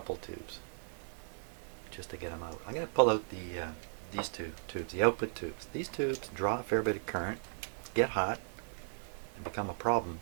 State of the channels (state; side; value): silent; left; digital silence